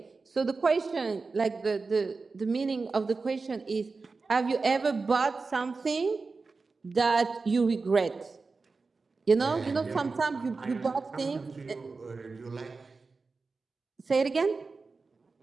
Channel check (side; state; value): left; quieter; 4.2 dB